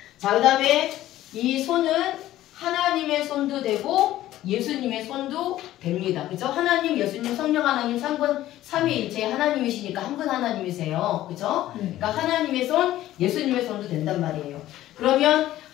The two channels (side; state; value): right; quieter; 14.2 dB